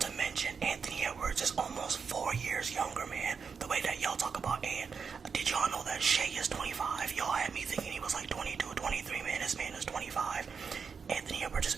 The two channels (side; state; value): left; quieter; 5.8 dB